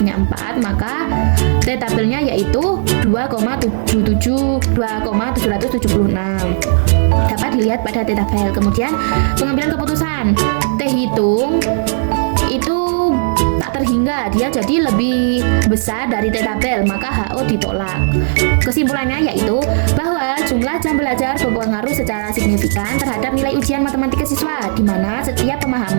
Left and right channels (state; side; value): silent; left; digital silence